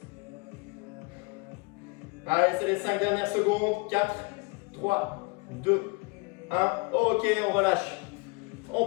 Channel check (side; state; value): right; quieter; 28.8 dB